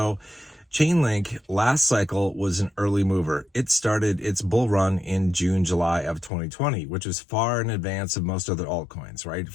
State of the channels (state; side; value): drops out; right; at 6.3 s